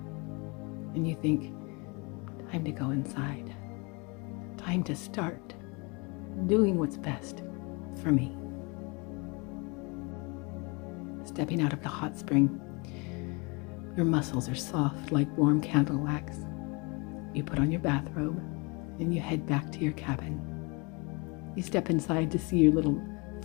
And you think, time to go inside. Time to start doing what's best for me. Stepping out of the hot spring, your muscles are soft like warm candle wax. You put on your bathrobe and you head back to your cabin. You step inside to see your little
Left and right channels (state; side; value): quieter; right; 29.4 dB